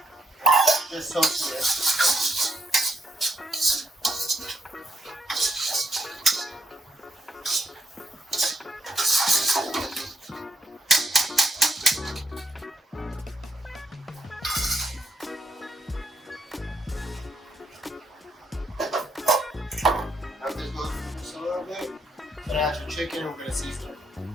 Just toast it. After this goes just a little bit, then add your chicken and we're going to season it.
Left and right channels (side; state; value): both; normal; correlation 0.76